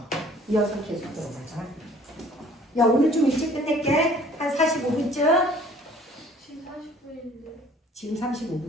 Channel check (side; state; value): both; normal; correlation 0.54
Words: 이어서 계속 들어가자. 야, 오늘 좀 일찍 끝낼게. 한 45분쯤. 지금 40분인데. 지금